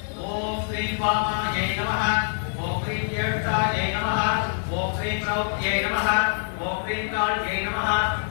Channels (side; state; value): right; silent; 62 dB below the other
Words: ஓம் ஸ்ரீ பாமாயை நமஹ, ஓம் ஸ்ரீ ஜேஷ்டாயை நமஹ, ஓம் ஸ்ரீ த்ரௌப்தியை நமஹ, ஓம் ஸ்ரீ காளியை நமஹ,